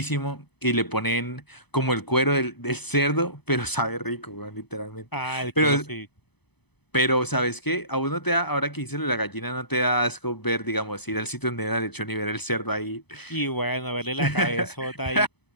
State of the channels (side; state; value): right; late; 0.98 ms